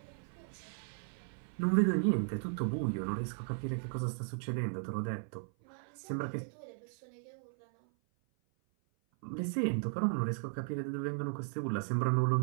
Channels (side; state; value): left; silent; 54 dB below the other